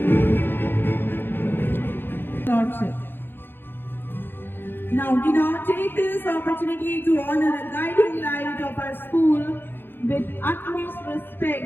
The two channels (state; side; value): late; right; 0.10 ms